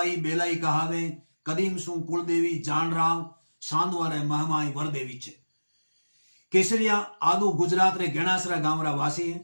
बेलाई कहावे कदीम सु कुलदेवी जान राव सांदवा रे महमाई वरदेवी छे। केसरिया आदू गुजरात रे गेणासरा गांव रा वासी है।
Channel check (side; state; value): both; inverted; correlation -1.00